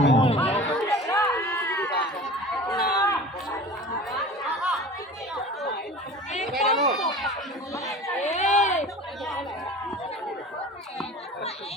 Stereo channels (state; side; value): normal; both; correlation 0.38